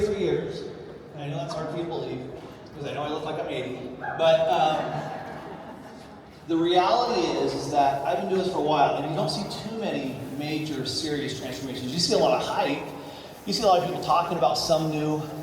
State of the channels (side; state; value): both; identical; correlation 1.00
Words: years, and I know that's hard for you to believe, because I know I look like I'm 80, but the reality is that I've been doing this for a while, and you don't see too many major, serious transformations. You see a lot of hype. You see a lot of people talking about some new